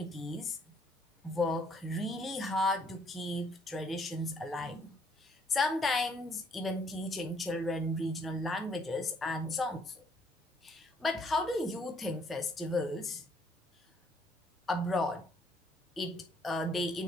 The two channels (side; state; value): both; normal; correlation 0.66